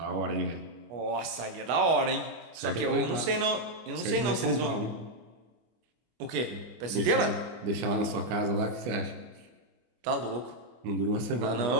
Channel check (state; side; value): late; left; 25 ms